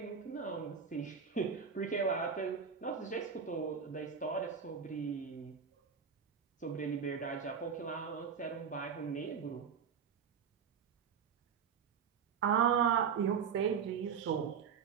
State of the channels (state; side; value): quieter; left; 6.8 dB